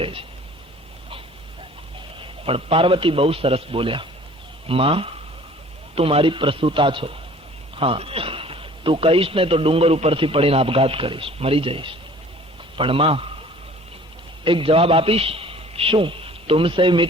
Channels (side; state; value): both; normal; correlation 0.50